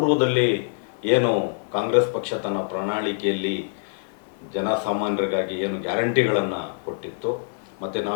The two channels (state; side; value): silent; right; 62 dB below the other